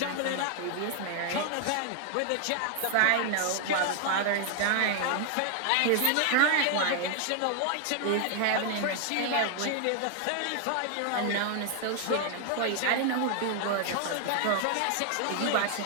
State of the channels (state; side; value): different; both; correlation 0.00